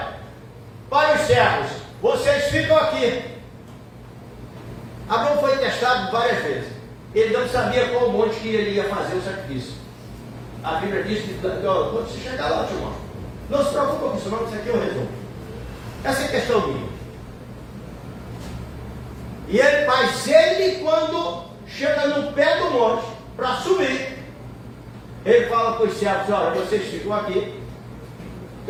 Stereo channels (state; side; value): identical; both; correlation 1.00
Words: para os servos, vocês ficam aqui. Abraão foi testado várias vezes. Ele não sabia qual monte que ele ia fazer o sacrifício. A Bíblia diz que, quando você chegar lá, eu te mostro. Não se preocupe com isso não, isso aqui eu resolvo. Essa é a questão minha. Mas ele, quando chega no pé do monte, para subir, ele fala para os servos, olha, vocês ficam aqui,